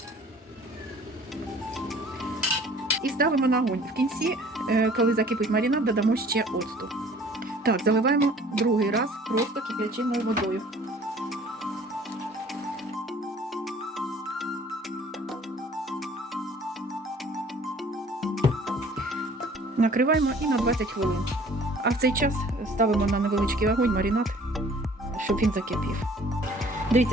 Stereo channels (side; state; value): both; normal; correlation 0.52